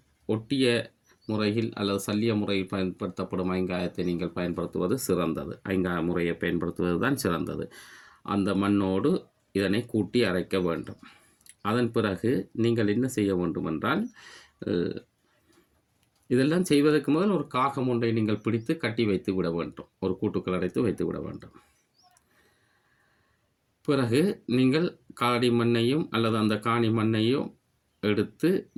ஒட்டிய முறையில் அல்லது சல்லிய முறையில் பயன்படுத்தப்படும் ஐங்காயத்தை நீங்கள் பயன்படுத்துவது சிறந்தது. ஐங்காய முறையை பயன்படுத்துவது தான் சிறந்தது. அந்த மண்ணோடு இதனை கூட்டி அரைக்க வேண்டும். அதன் பிறகு நீங்கள் என்ன செய்ய வேண்டும் என்றால் இதெல்லாம் செய்வதற்கு முதல் ஒரு காகம் ஒன்றை நீங்கள் பிடித்து கட்டி வைத்து விட வேண்டும். ஒரு கூட்டுக்குள் அடைத்து வைத்து விட வேண்டும். பிறகு நீங்கள் காடி மண்ணையும் அல்லது அந்த காணி மண்ணையும் எடுத்து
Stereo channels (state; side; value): identical; both; correlation 1.00